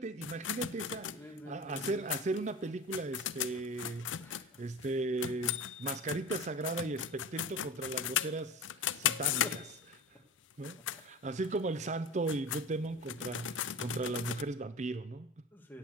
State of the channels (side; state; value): both; normal; correlation 0.32